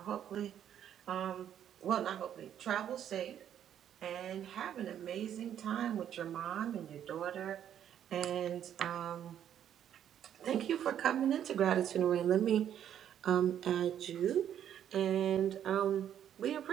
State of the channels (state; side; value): quieter; left; 9.9 dB